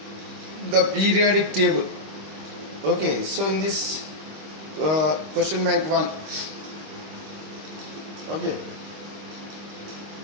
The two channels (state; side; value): late; left; 26 ms